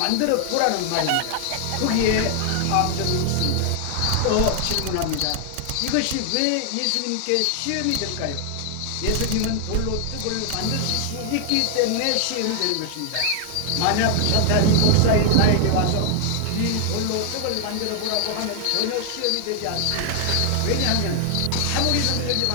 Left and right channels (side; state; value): both; different; correlation 0.00